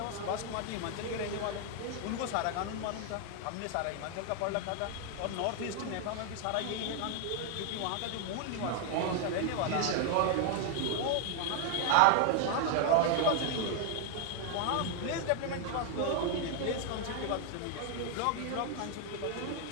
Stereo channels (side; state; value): both; different; correlation 0.01